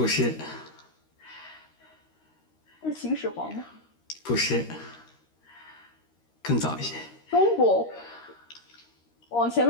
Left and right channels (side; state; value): right; late; 13 ms